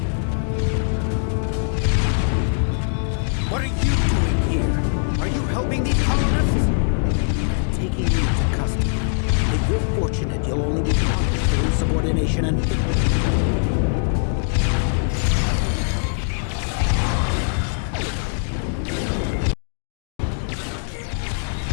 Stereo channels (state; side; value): silent; right; digital silence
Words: What are you doing here? Are you helping these colonists? Taking you into custody. If you're fortunate, you'll only be punished for insubordination and